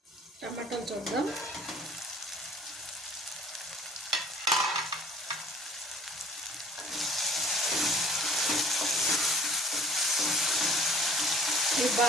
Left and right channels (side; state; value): both; normal; correlation 0.52